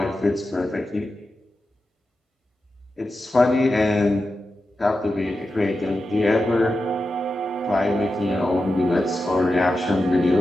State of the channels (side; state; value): both; normal; correlation 0.91